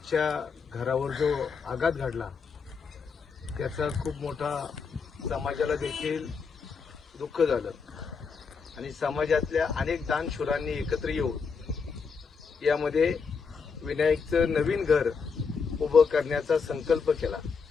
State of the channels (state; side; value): quieter; right; 5.4 dB